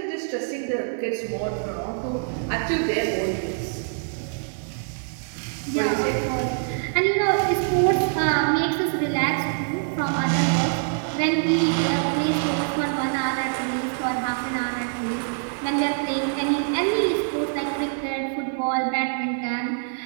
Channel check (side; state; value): left; silent; digital silence